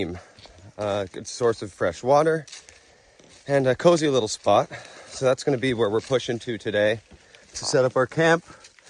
good source of fresh water and a cozy little spot. So that's going to be where we're pushing to today to set up our camp.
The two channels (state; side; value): identical; both; correlation 1.00